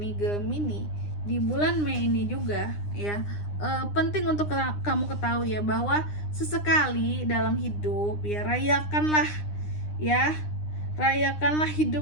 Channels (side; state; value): right; late; 9.8 ms